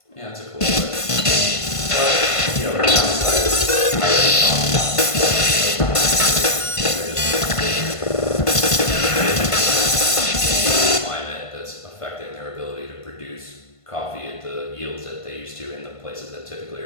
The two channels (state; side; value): late; right; 1.5 ms